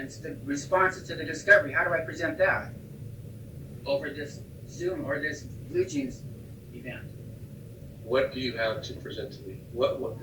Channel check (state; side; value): identical; both; correlation 1.00